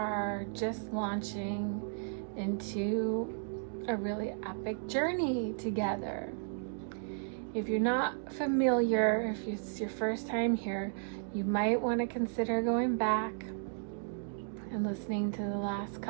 just launching into a really epic journey together. If you're not familiar, if it's your first time here, you might want to consider going back and listening to the last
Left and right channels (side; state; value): left; silent; digital silence